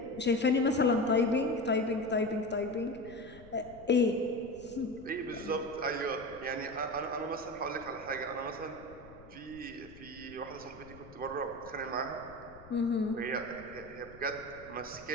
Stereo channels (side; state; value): left; noise; rumble, 19 dB below the sound